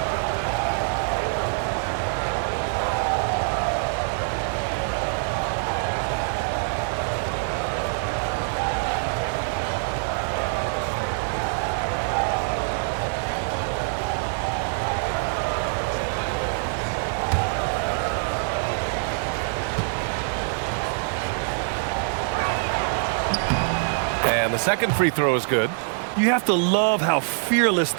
And the second free throw is good. You have to love how fearless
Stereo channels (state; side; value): silent; left; digital silence